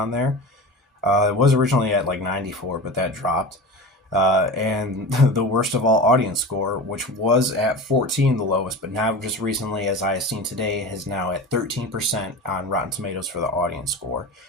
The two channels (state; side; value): normal; both; correlation 0.31